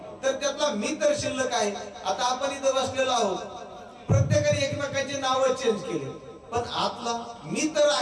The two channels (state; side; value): identical; both; correlation 1.00